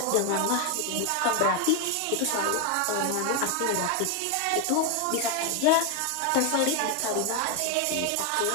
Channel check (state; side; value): different; both; correlation 0.01